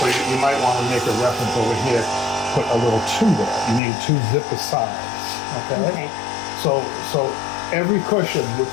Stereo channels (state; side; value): drops out; right; at 3.8 s